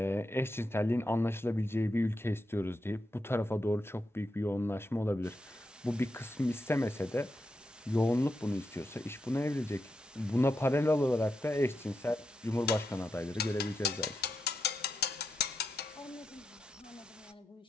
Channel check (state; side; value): normal; both; correlation 0.86